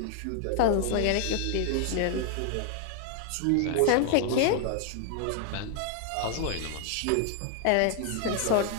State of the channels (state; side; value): different; both; correlation 0.00